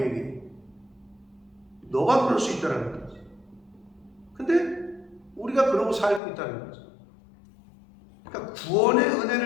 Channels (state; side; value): drops out; right; at 6.2 s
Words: 너가 그럴 수 있다는 거지. 근데 우리가 그러고 살고 있다는 거지. 그러니까 구원의